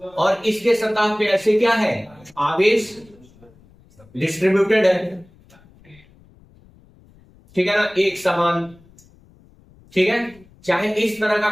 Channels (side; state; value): left; noise; rumble, 28 dB below the sound